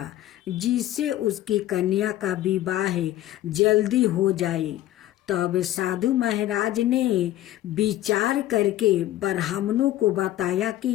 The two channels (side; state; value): right; quieter; 14.2 dB